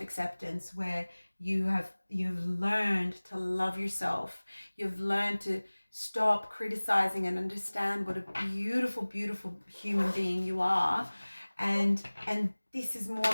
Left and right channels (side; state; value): both; inverted; correlation -1.00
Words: where you've learned to love yourself, you've learned to stop criticizing and understand what a beautiful, beautiful human being you are, and this is more